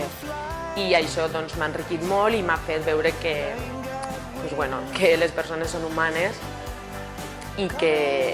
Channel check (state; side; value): identical; both; correlation 1.00